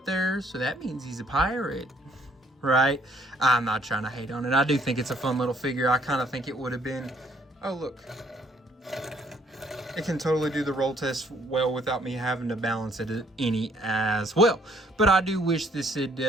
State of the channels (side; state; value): both; normal; correlation 0.64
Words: there, so that means he's a pirate, right? I'm not trying to hate on it. I do think it's a fun little figure. I kind of think it would have been, oh look, it can totally do the roll test well without me having to balance it any as well. But I do wish this